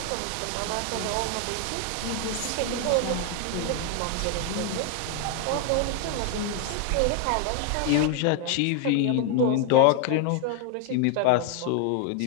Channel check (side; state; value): both; different; correlation 0.00